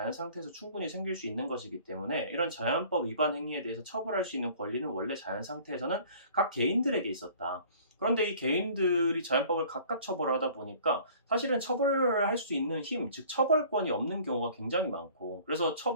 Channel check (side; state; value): both; inverted; correlation -0.50